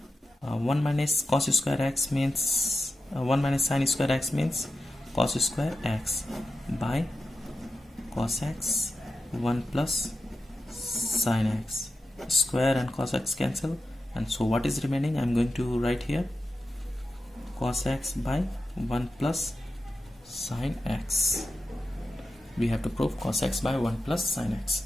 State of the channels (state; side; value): normal; both; correlation 0.90